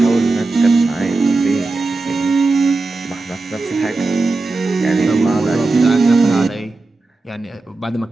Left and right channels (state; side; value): quieter; left; 3.5 dB